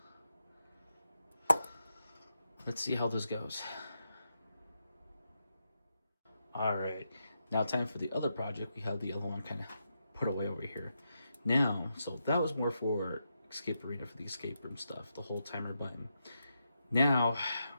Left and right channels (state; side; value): inverted; both; correlation -0.85